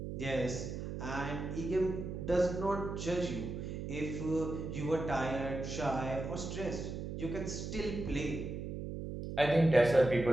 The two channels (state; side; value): noise; right; hum, 6 dB below the sound